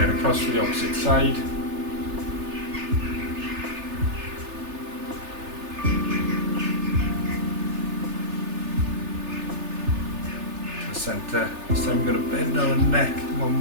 across to the opposite side. To the centre. This time we're going to bend our neck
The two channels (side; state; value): left; late; 3.3 ms